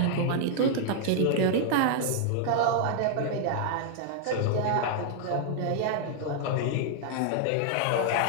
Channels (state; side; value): different; both; correlation -0.01